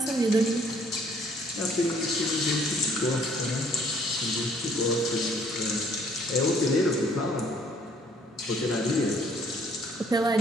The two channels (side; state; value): both; normal; correlation 0.61